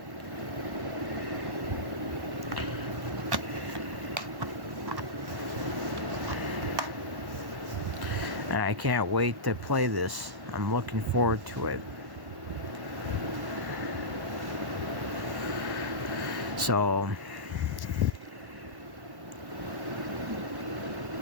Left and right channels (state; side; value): late; left; 1.1 ms